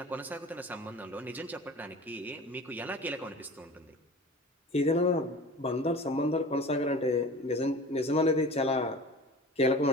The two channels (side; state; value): both; normal; correlation 0.38